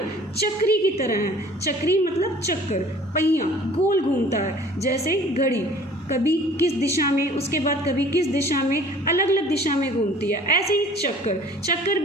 चक्री की तरह हैं। चक्री मतलब चक्कर, पहिया गोल घूमता है, जैसे घड़ी कभी किस दिशा में, उसके बाद कभी किस दिशा में, अलग अलग दिशा में घूमती है। ऐसे ही चक्कर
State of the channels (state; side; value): normal; both; correlation 0.49